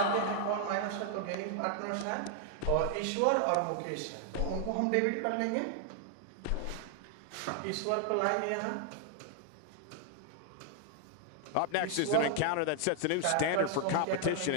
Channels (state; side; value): different; both; correlation 0.00